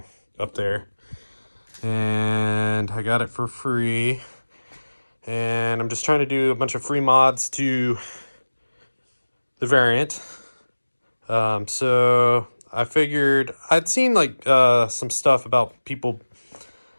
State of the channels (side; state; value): both; inverted; correlation -1.00